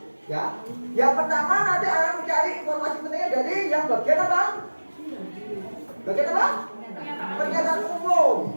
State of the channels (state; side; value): inverted; both; correlation -1.00